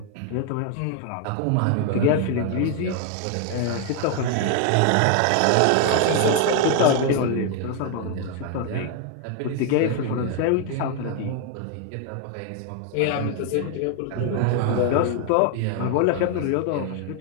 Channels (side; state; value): both; different; correlation 0.00